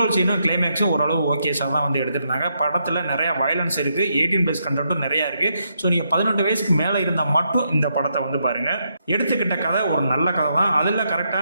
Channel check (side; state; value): both; inverted; correlation -0.79